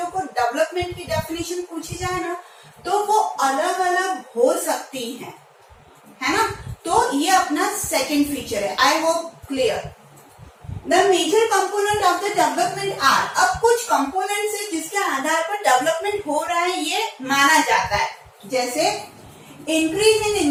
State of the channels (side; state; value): both; identical; correlation 1.00